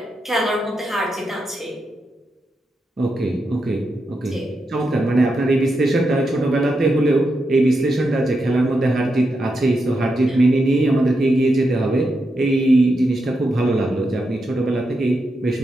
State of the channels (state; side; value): normal; both; correlation 0.85